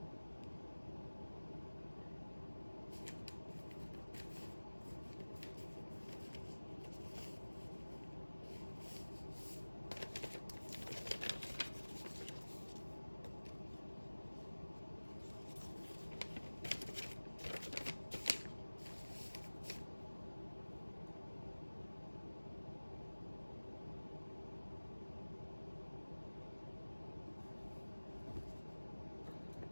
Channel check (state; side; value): inverted; both; correlation -1.00